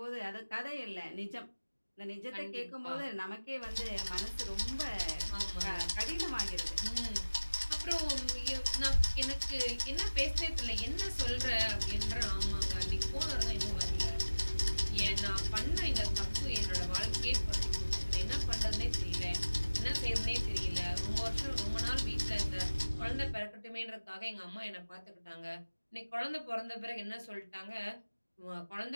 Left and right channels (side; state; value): both; inverted; correlation -1.00